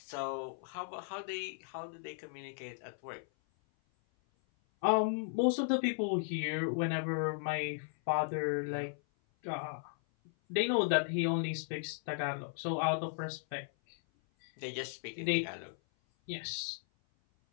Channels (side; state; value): right; silent; 54 dB below the other